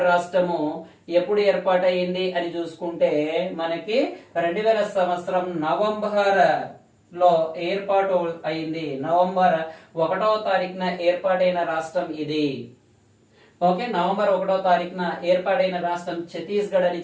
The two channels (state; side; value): identical; both; correlation 1.00